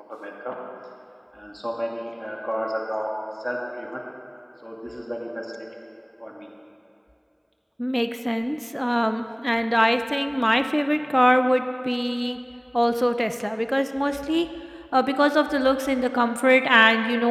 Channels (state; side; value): identical; both; correlation 1.00